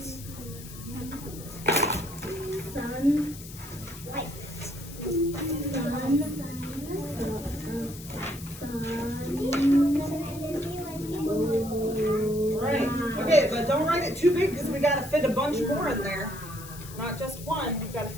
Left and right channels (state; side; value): noise; left; hiss, 15 dB below the sound